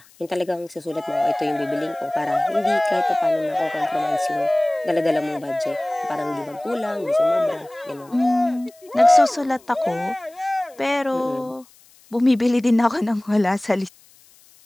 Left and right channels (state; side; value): noise; left; hiss, 28 dB below the sound